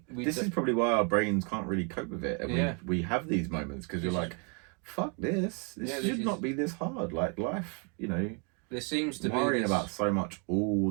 This is probably why our brains can't really cope with it. And we have these moments because you're like, fuck this. This should not be this hard. Like life, you know. There seems to be worrying about so much all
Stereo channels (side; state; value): left; quieter; 35.8 dB